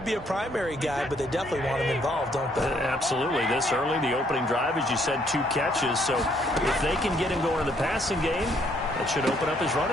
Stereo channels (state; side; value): normal; both; correlation 0.68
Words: be a primary guy, but they definitely want him involved, don't they? Absolutely. This early, the opening drive, as you said, 2 catches. So if they can get him going in the passing game, that should open up his